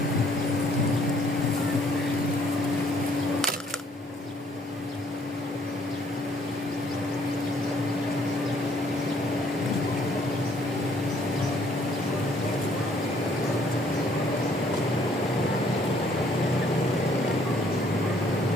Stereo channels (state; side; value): normal; both; correlation 0.64